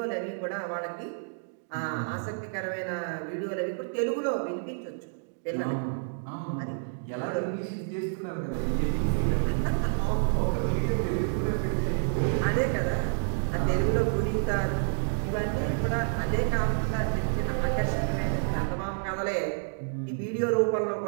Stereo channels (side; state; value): left; silent; digital silence